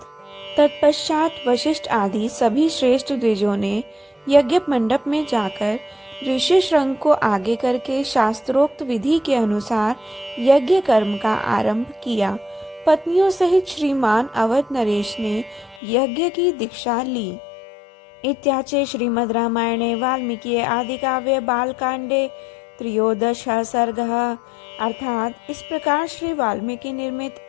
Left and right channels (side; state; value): right; drops out; at 15.8 s